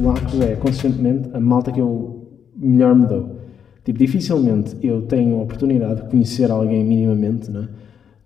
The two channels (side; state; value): right; quieter; 7.9 dB